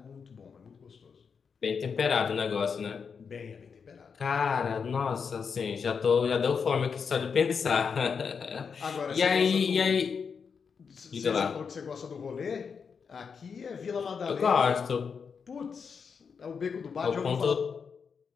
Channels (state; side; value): quieter; right; 6.0 dB